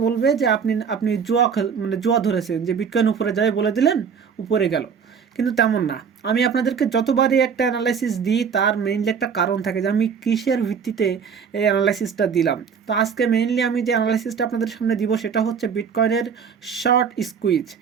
বলবে যে আপনি আপনি জুয়া ধরেছেন, যে বিটকয়েন উপরে যাবে বলে দিলেন, উপরে গেল। কিন্তু তেমন না। আমি আপনাদেরকে যতবারই একটা অ্যানালাইসিস দিই তার মেইনলি একটা কারণ থাকে যে আমি কিসের ভিত্তিতে এই অ্যানালাইসিসটা দিলাম। তো আজকে মেইনলি আমি যে অ্যানালাইসিসটা আপনাদের সামনে দিব সেটা হচ্ছে বিটকয়েনের শর্ট স্কুইজ।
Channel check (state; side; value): quieter; left; 6.7 dB